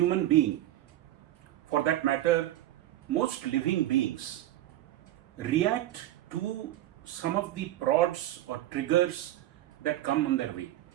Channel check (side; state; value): left; quieter; 14.3 dB